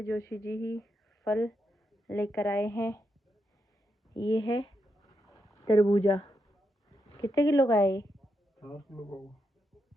जोशी जी ही फल लेकर आए हैं। ये है तरबूजा। कितने किलो का है ये? 4 किलो का।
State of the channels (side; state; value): both; normal; correlation 0.83